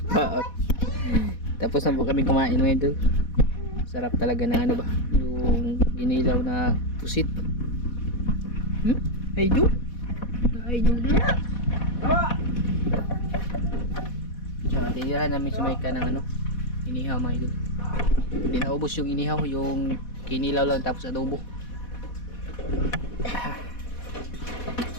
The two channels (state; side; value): late; right; 4.1 ms